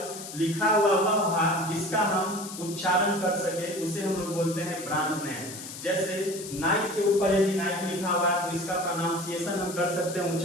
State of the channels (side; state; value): left; noise; hiss, 11 dB below the sound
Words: लिखा हुआ वह भाग जिसका हम उच्चारण कर सके उसे हम लोग बोलते हैं ब्रांड नेम। जैसे नाइक के ऊपर यदि नाइक लिखा हुआ है तो इसका प्रोनाउंसिएशन हम कर सकते हैं,